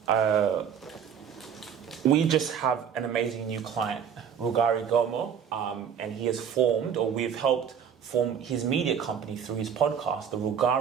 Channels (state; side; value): quieter; left; 7.9 dB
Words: We just have an amazing new client, Rugari Gomo, and he has formed, or we've helped form his media company through his podcast, the